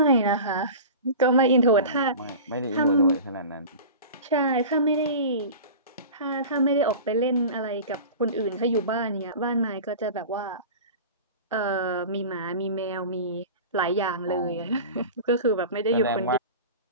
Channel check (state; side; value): inverted; both; correlation -0.34